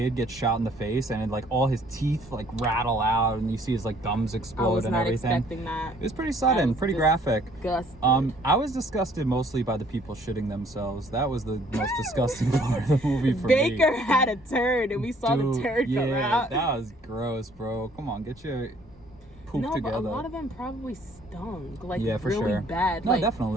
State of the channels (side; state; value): both; normal; correlation 0.60